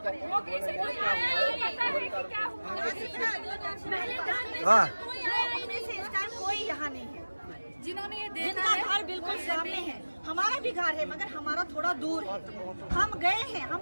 हाँ। कोई यहाँ नहीं है जिन्होंने ये देखा है। घर बिल्कुल सामने है, हमारा भी घर है मगर हमारा थोड़ा दूर है। हम गए हैं,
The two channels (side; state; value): both; inverted; correlation -1.00